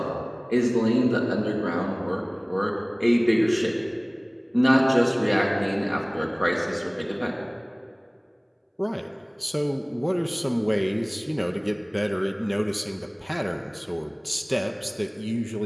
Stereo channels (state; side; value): identical; both; correlation 1.00